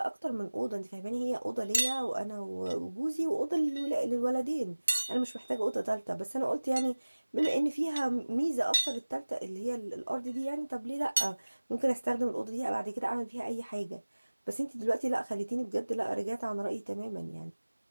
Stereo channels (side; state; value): both; inverted; correlation -1.00